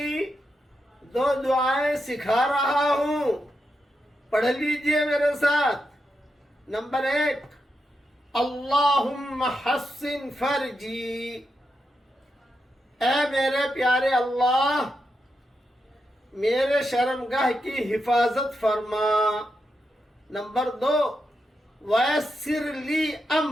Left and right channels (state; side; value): normal; both; correlation 0.85